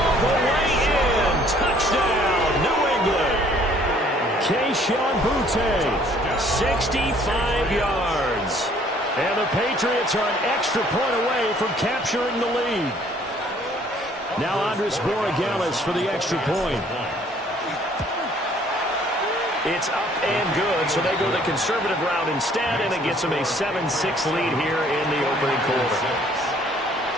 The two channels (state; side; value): normal; both; correlation 0.59